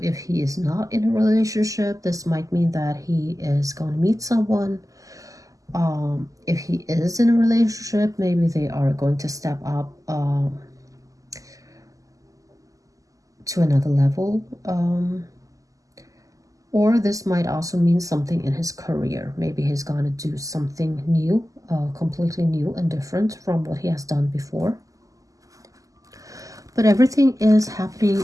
if he is not in a relationship, this might mean that he is going to meet someone. If he is in a relationship, maybe they are going to step up to another level. Or this might also mean something in his career. Maybe he's going to do something new, completely new and different from what he has done before. But everything is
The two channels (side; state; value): left; late; 0.17 ms